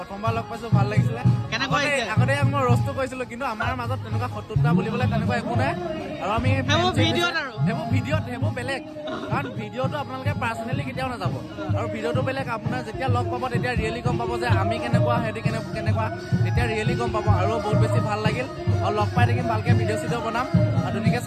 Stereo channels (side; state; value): both; identical; correlation 1.00